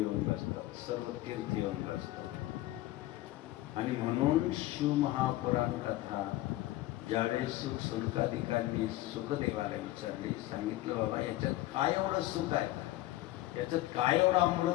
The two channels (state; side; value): quieter; right; 16.5 dB